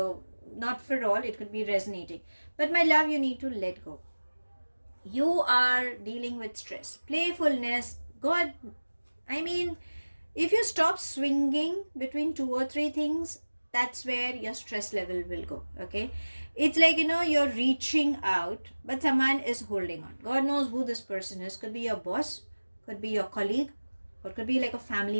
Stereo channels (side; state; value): both; inverted; correlation -1.00